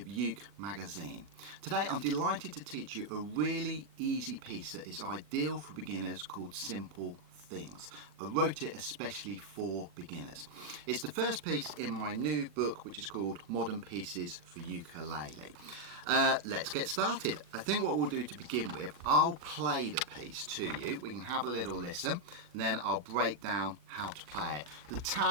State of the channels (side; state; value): left; late; 40 ms